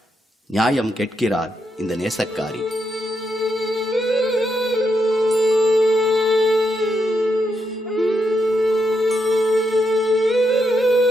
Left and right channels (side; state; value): both; normal; correlation 0.81